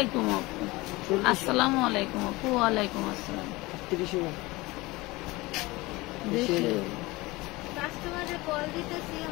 আপু। আসসালামু আলাইকুম আপু। ওয়ালাইকুম আসসালাম। 38 হবে।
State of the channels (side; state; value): right; quieter; 21.5 dB